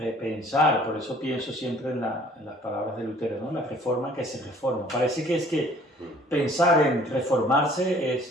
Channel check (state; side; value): normal; both; correlation 0.55